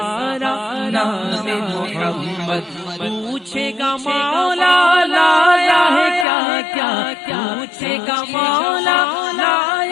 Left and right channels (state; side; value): drops out; right; at 6.2 s